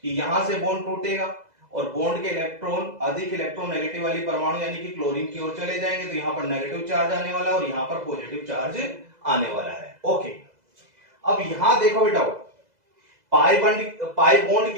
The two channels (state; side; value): late; left; 2.0 ms